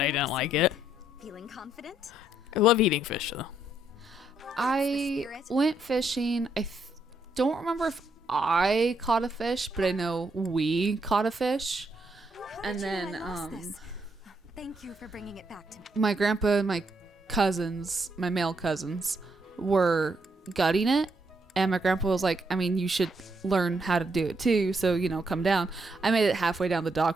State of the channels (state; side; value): normal; both; correlation 0.75